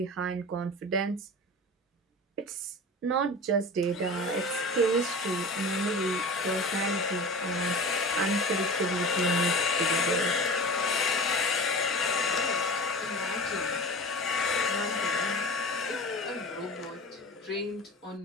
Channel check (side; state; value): both; normal; correlation 0.35